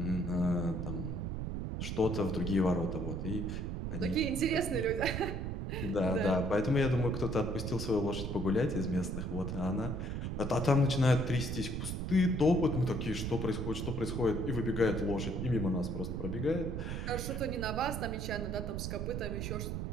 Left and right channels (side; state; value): right; noise; rumble, 3 dB below the sound